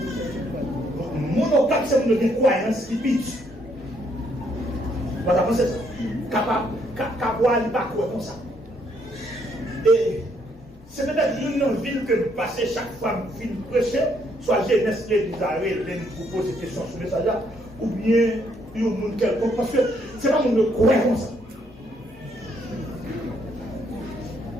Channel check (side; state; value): both; normal; correlation 0.71